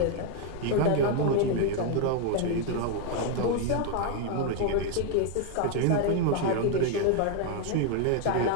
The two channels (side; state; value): both; different; correlation 0.00